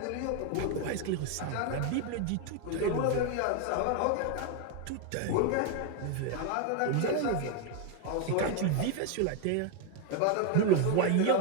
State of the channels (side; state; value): both; different; correlation 0.01